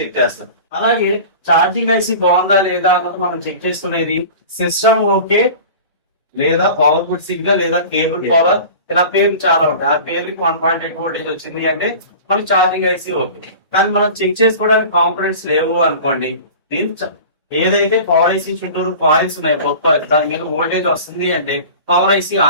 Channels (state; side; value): inverted; both; correlation -0.38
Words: చేస్తాం. అలాగే ఛార్జింగ్ ఐసి బాగుందా లేదా అన్నది మనం చెక్ చేసుకునేది సిస్టమ్ ఓకే లేదా పవర్ఫుల్ సిగ్నల్ లేదా కేబుల్ పవర్, ఇలా పేర్లు చాలా ఉంటాయి. ఆ పేర్లకి 1.8 వోల్టేజ్ వచ్చింది అంటే మనకి ఛార్జింగ్ ఐసి ఓకే. కానీ మనం చెక్ చేసుకోవడానికి కాంపొనెంట్స్ లేవు అనుకోండి, ఏదైతే పవర్ ఐసి చుట్టూరు కాయిల్స్ ఉన్నాయి గొప్ప దాని మీద వోల్టేజ్ వస్తుంది అంటే పవర్ ఐసి